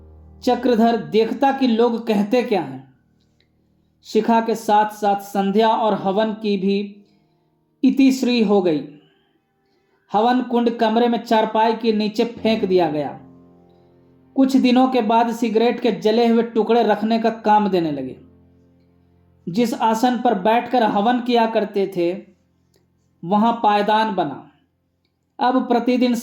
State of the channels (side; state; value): both; identical; correlation 1.00